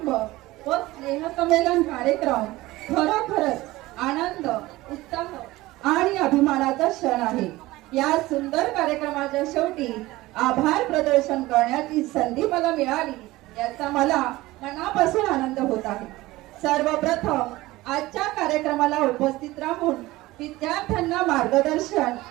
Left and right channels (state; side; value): quieter; left; 18.6 dB